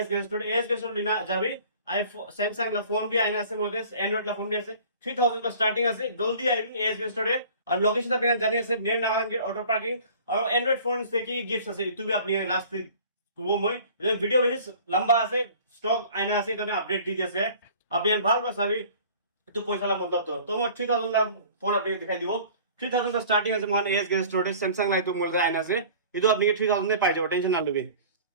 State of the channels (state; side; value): inverted; both; correlation -0.47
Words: गेस्टोड लिना जाबी आईफोन सैमसंग ला फोन भी आइना আছে মোদের অ্যান্ড্রয়েড লা ফোন भी আছে 3000 का स्टार्टिंग আছে জলদি আইবি এস गेस्टोडে। আর লোকেশন আপনি জানি আছে নিয়ার নাগান গেট অটো পার্কিং। আর অ্যান্ড্রয়েড ফোন থেকে গিফটস আছে ইতু भी আপনি লাস্ট করব মই ভিডিও বেশি লম্বা আছে স্টক আইনা আছে এখানে আপডেট দি দিয়েছে আপনি ভাল পাসাবি একটু পয়সা লা মতলব তো তোমার 3000 লা ফোন আপনি দেখাই দিব। 3000 का स्टार्टिंग আছে মান এস गेस्टोडে স্যামসাং লাই তো মোদের আইনা আছে ইতু আপনি 3000 এ পাই যাবেন টেনশন না লবে।